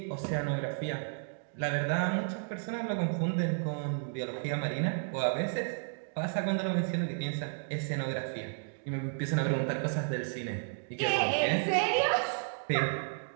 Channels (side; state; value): left; silent; digital silence